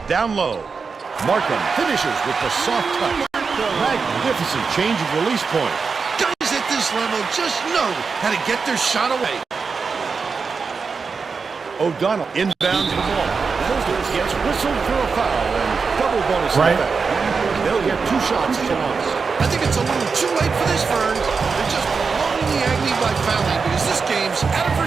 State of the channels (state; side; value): quieter; left; 5.0 dB